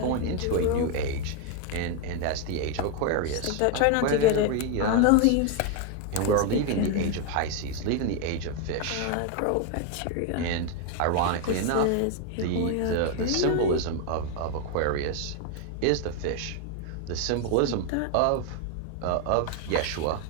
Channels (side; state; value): both; different; correlation 0.01